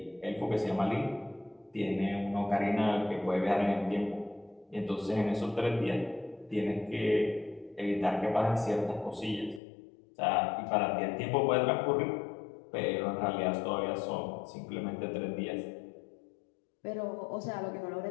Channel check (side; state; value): right; drops out; at 9.6 s